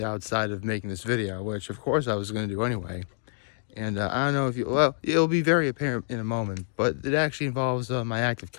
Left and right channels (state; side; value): silent; right; digital silence